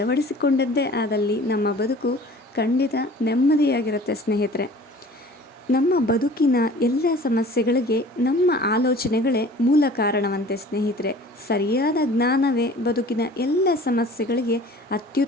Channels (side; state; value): both; normal; correlation 0.46